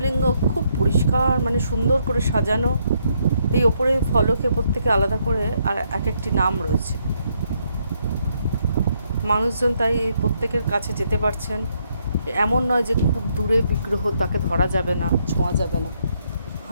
খুব পরিষ্কার, মানে সুন্দর করে সাজানো। এই ওপরে ফলকে প্রত্যেকে আলাদা করে আর এক একটি নাম রয়েছে। মানুষজন তাই এই প্রত্যেকের কাছে যেতে পারছেন। এমন নয় যে খুব দূরে বিগ্রহ, তাকে ধরা যাবে না, ছোঁয়া যাবে না।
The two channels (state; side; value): inverted; both; correlation -0.74